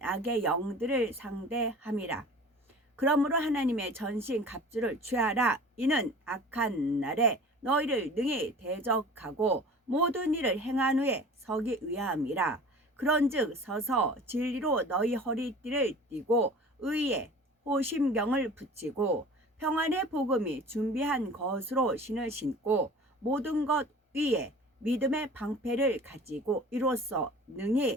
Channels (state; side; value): normal; both; correlation 0.42